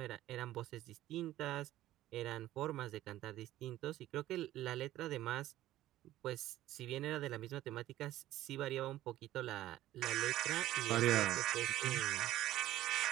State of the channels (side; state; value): left; quieter; 14.5 dB